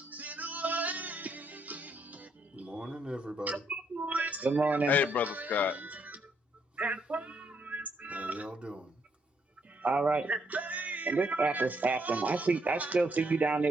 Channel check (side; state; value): both; normal; correlation 0.73